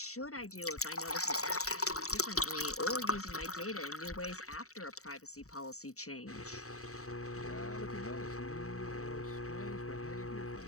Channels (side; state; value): right; late; 0.64 ms